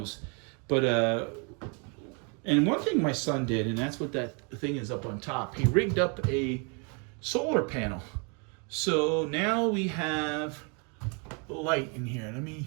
But and one thing my son did, and that's what that thing is up on top, he rigged up a solar panel. So now we have light in here.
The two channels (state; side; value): quieter; left; 35.5 dB